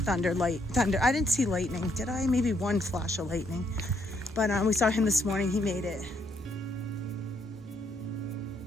thunder. I didn't see lightning, did I? Maybe one flash of lightning, but we saw him this morning. He made it.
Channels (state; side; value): normal; both; correlation 0.72